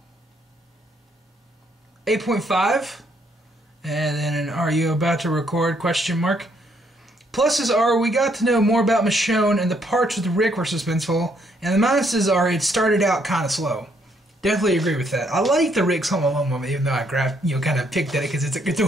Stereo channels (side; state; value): both; normal; correlation 0.70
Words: 8.5. And then an "Are you about to record?" question mark. Pluses are we got to know more about Michonne and the parts with Rick were suspenseful. And the minuses are it started out kind of slow. Definitely agree with that. I like the Rick's Home Alone moment, even though I kind of picked at it because it's a